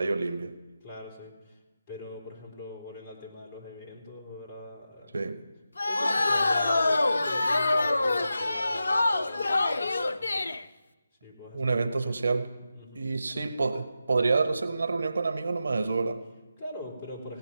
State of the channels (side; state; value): both; inverted; correlation -0.90